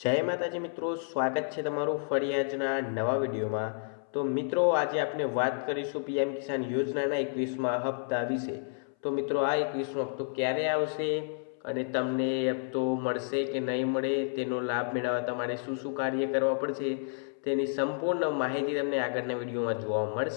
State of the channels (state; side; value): silent; right; 57 dB below the other